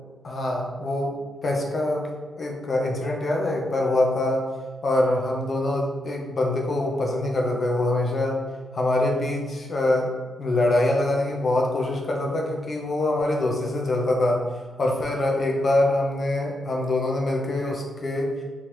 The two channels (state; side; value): normal; both; correlation 0.83